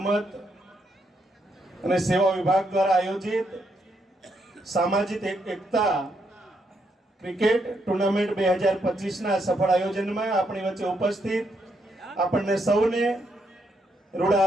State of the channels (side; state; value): both; normal; correlation 0.77